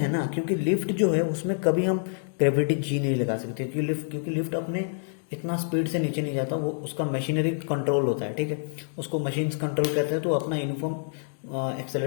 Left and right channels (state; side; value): silent; right; digital silence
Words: ना, क्योंकि लिफ्ट जो है उसमें कभी हम ग्रेविटी जी नहीं लगा सकते, क्योंकि लिफ्ट अपने इतना स्पीड से नीचे नहीं जाता, वो उसका मशीनरी कंट्रोल होता है, ठीक है, उसको मशीन कंट्रोल कहते हैं। तो अपना यूनिफॉर्म